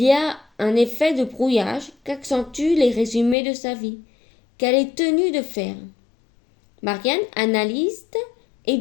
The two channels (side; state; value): right; drops out; at 3.4 s